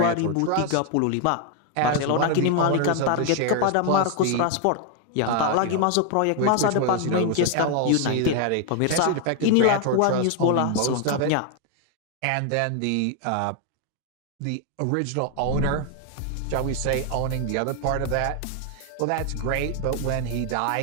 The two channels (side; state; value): both; different; correlation 0.00